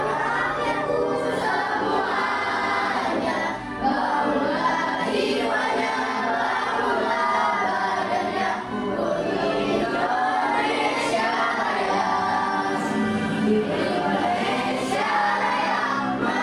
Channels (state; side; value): identical; both; correlation 1.00